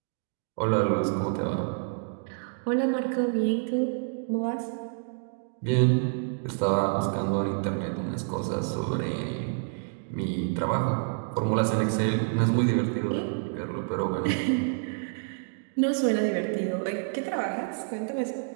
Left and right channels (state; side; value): silent; left; 59 dB below the other